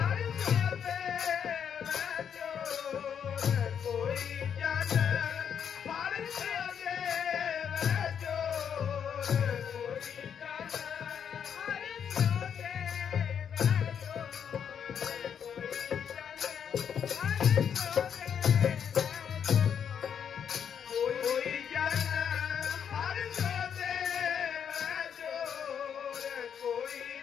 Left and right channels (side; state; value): right; quieter; 8.0 dB